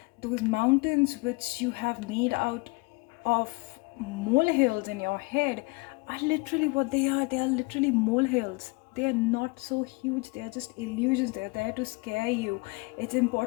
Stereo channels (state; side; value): quieter; right; 27.4 dB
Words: Those mountains which you have made out of molehills in your head are literally what they are. They are literally molehills. They are not so huge. They are just illusions. They are there to scare you. It's